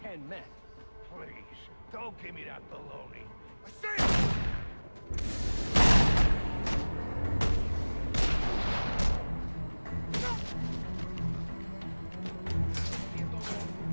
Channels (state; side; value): inverted; both; correlation -1.00